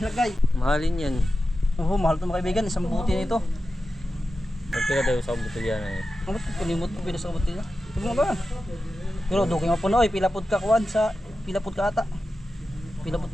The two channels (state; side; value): normal; both; correlation 0.92